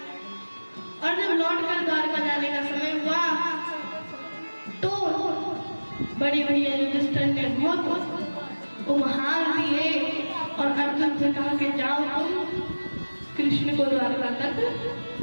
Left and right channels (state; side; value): inverted; both; correlation -1.00